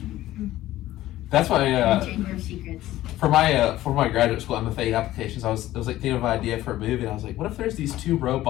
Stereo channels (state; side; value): quieter; right; 15.0 dB